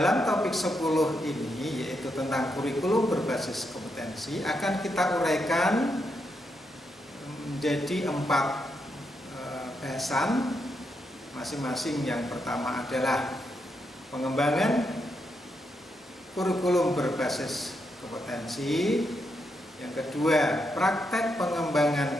topik 10 ini, yaitu tentang kurikulum berbasis kompetensi, akan kita uraikan menjadi 4 bahasan. Masing-masing. Yang pertama adalah pengembangan kurikulum berbasis kompetensi. Yang kedua, praktek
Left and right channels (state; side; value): normal; both; correlation 0.82